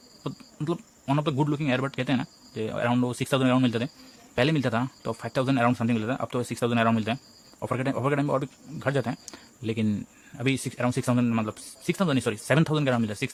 तो मतलब one of the good looking earbud कहते हैं ना, जो अराउंड 6,000 अराउंड मिलते थे। पहले मिलता था तो 5,000 अराउंड समथिंग मिलता था, अब तो 6,000 अराउंड मिलते हैं। ऑफर के टाइम में और भी घट जाते हैं, लेकिन अभी अराउंड 6,000, मतलब 6,000 नहीं, सॉरी 7,000 का अराउंड मिलता है।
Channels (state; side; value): identical; both; correlation 1.00